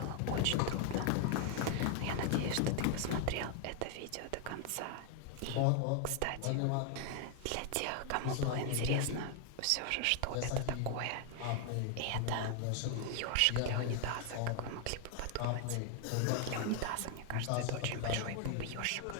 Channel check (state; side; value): different; both; correlation 0.00